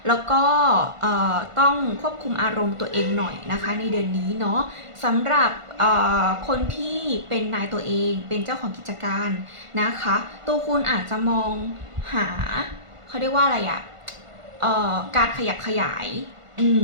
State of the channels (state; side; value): late; left; 1.5 ms